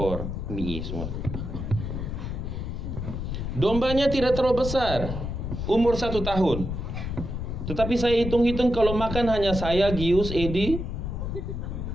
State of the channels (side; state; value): left; noise; rumble, 4 dB below the sound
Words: mie semua. Dombanya tidak terlalu besar, umur 1 tahun. Tetapi saya hitung-hitung kalau makan hanya saya, Gius, Edi,